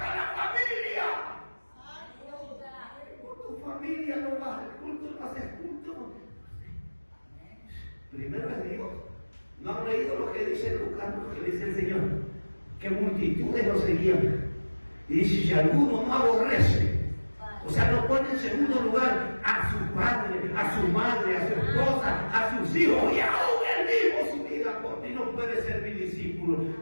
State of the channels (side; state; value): both; inverted; correlation -1.00